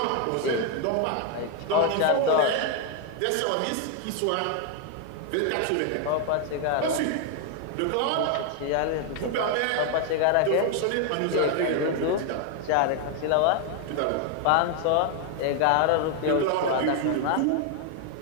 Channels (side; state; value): both; different; correlation 0.00